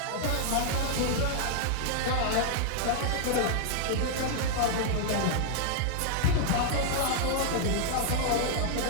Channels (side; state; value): both; different; correlation -0.01